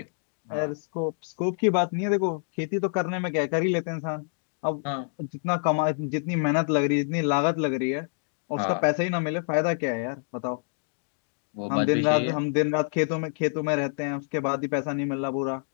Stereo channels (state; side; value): silent; right; digital silence